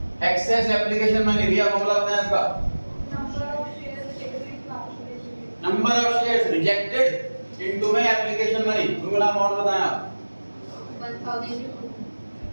एक्सेस एप्लीकेशन मैंने दिया, फॉर्मूला बताया इसका। Number of shares rejected into में एप्लीकेशन मनी। फॉर्मूला अमाउंट बताया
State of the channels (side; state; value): both; inverted; correlation -1.00